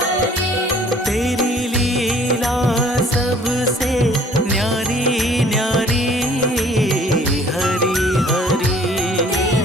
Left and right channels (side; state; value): both; normal; correlation 0.55